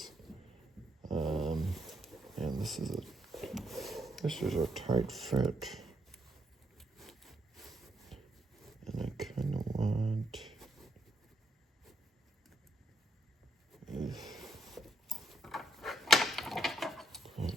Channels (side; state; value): both; normal; correlation 0.76